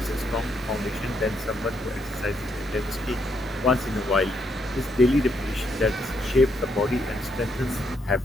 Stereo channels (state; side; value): normal; both; correlation 0.75